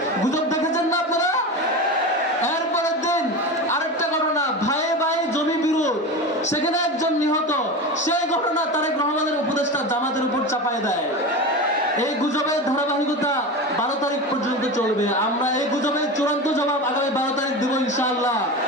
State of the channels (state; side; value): normal; both; correlation 0.25